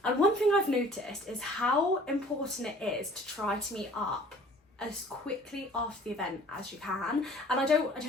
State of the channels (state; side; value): normal; both; correlation 0.50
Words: And one thing I've noticed is how important it is to try to meet up as quickly after the event as you can. And I don't